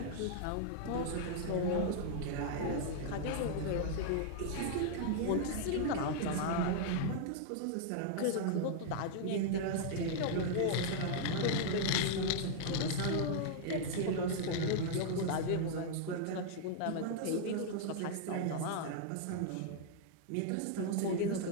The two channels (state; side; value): different; both; correlation -0.01